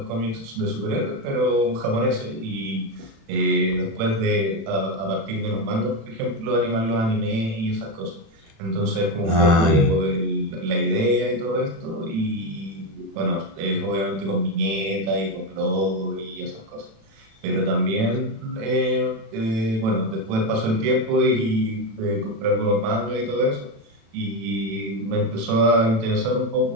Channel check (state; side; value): late; left; 36 ms